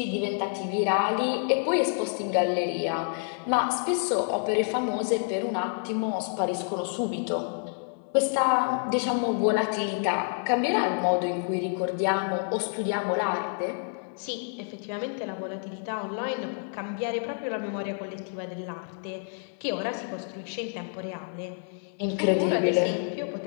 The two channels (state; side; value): silent; right; 59 dB below the other